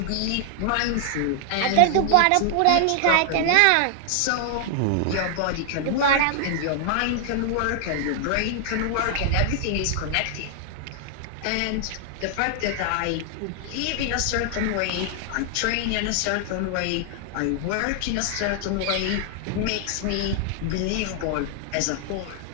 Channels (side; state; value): both; different; correlation 0.00